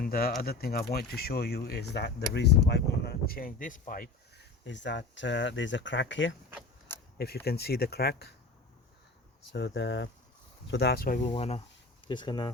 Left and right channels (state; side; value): quieter; right; 3.3 dB